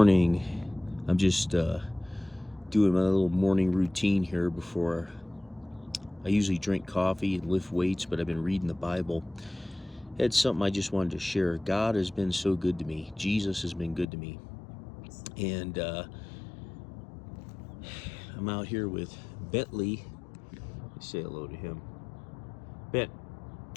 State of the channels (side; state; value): right; drops out; at 14.1 s